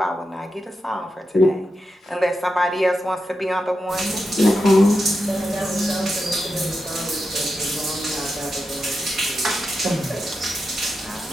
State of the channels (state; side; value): normal; both; correlation 0.88